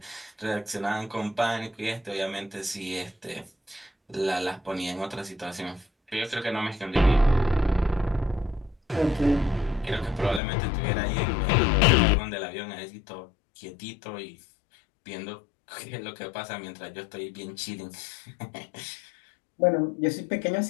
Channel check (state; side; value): drops out; right; at 10.4 s